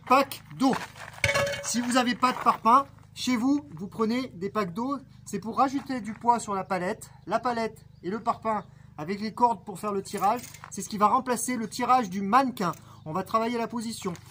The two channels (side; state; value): both; identical; correlation 1.00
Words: packs d'eau. Si vous n'avez pas de parpaings, chez vous, vous prenez des packs d'eau. C'est pour rajouter du poids sur la palette. La palette et le parpaing avec les cordes pour faire le tirage. C'est ce qui va remplacer le tirage du mannequin. On va travailler la position.